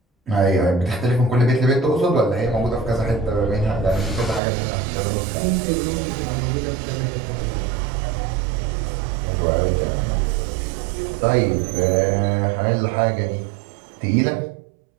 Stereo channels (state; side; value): drops out; left; at 4.4 s